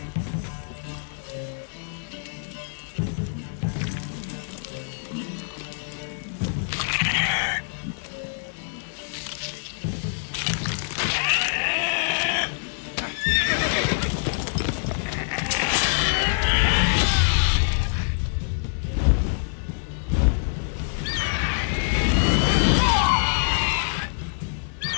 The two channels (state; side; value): silent; right; 62 dB below the other